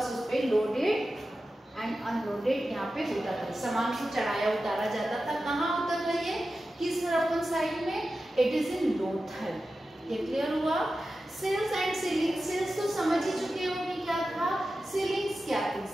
उस पर लोडेड एंड अनलोडेड यहाँ पे होता था, सामान को चढ़ाया उतारा जाता था। कहाँ उतर रही है? किस हड़प्पन साइट में? इट इज इन लोथल। ये क्लियर हुआ? Sales and ceiling. सेल्स तो समझ ही चुके होंगे क्या था। सीलिंग्स क्या थी?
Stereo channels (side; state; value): both; normal; correlation 0.93